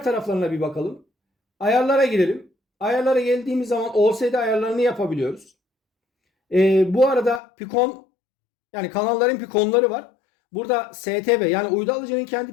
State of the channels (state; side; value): drops out; right; at 7.4 s